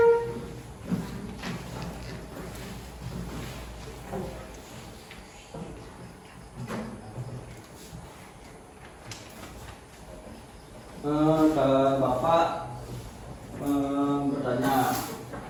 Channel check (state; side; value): identical; both; correlation 1.00